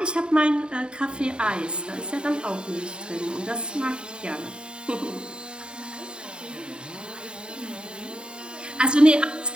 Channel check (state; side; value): late; left; 0.050 ms